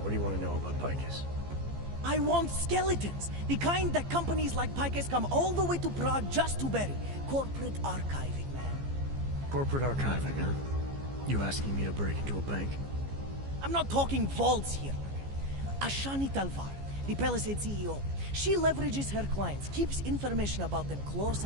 what do you want to know about Picus? I want skeletons. The kind that companies like Picus come all the way to Prague just to bury. Corporate archiving, man. Corporate archiving, huh? You asking me to break into a bank? I'm not talking vaults here. Ashani Talvar, the Palisade CEO. She leverages her clients, keeps information about them close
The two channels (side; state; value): left; late; 15 ms